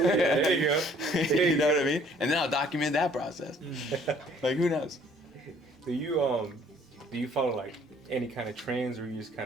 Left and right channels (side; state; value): both; normal; correlation 0.59